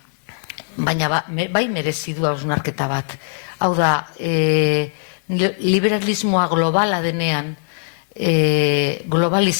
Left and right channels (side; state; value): right; silent; digital silence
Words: bai merezi du hausnarketa bat. Hau da, liberalismoa globala denean,